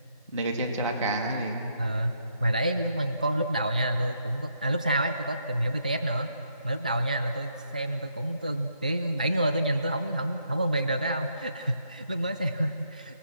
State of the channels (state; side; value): inverted; both; correlation -0.75